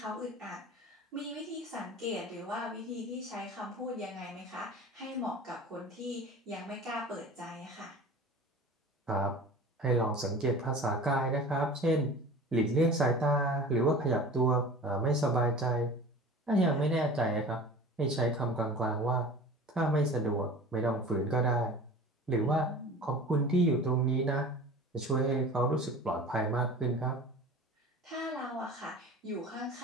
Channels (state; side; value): normal; both; correlation 0.39